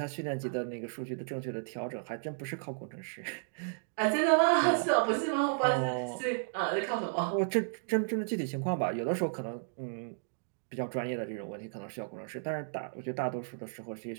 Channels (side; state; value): left; silent; digital silence